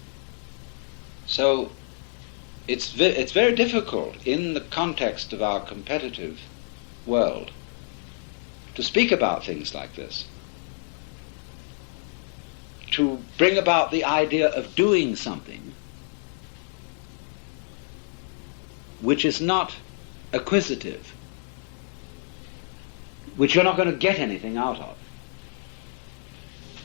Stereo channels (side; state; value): right; silent; 56 dB below the other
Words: So it's very difficult in the context of our competitive world to speak about things like this, to bring about the idea of doing something which is not acquisitive, which you're not going to get anything out of,